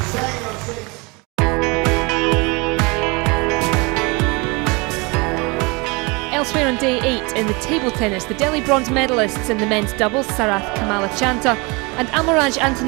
Elsewhere on day 8 in the table tennis, the Delhi bronze medalists in the men's doubles, Sarath Kamalachanta and Amaraj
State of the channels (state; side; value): quieter; left; 27.6 dB